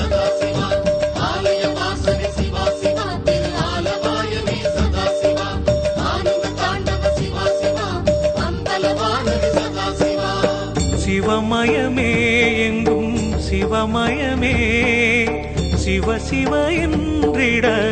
சிவமயமே எங்கும் சிவமயமே, சிவ சிவ என்றிட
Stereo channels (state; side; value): identical; both; correlation 1.00